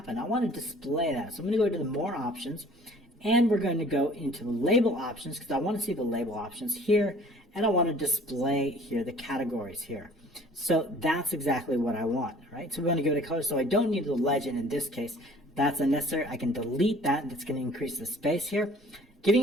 I want to display that. So I'm going to go to the more options, and we're going to go into the label options because I want to see the label options here, and I want to display here the categories here. So that's exactly what I want, right? So we're going to give it a color. So I don't need the legend in this case. That's unnecessary. I can delete that. That's going to increase the space here.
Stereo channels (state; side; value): normal; both; correlation 0.52